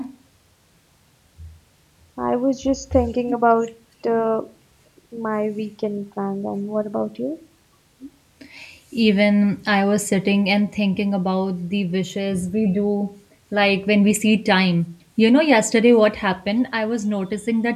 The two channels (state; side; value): identical; both; correlation 1.00